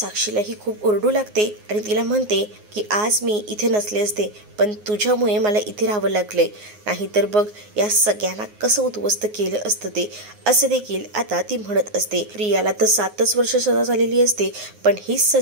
खूप ओरडू लागते आणि तिला म्हणते की आज मी इथे नसले असते, पण तुझ्यामुळे मला इथे राहावं लागले, नाहीतर बघ या सगळ्यांना कसं उद्ध्वस्त केलं असतं ते, असं देखील आता ती म्हणत असते. प्रियाला तर 7च वर्ष सजा झालेली असते, पण ही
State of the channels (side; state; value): left; late; 9.5 ms